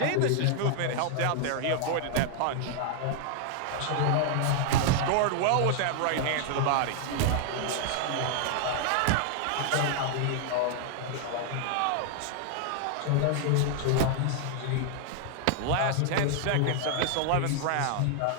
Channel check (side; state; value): both; different; correlation 0.00